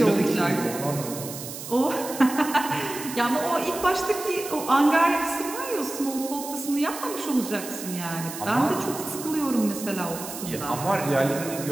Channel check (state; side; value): noise; right; hiss, 10 dB below the sound